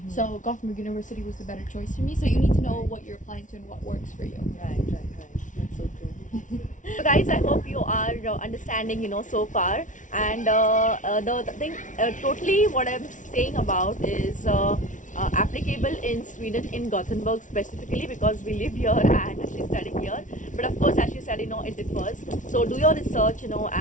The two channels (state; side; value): late; right; 0.37 ms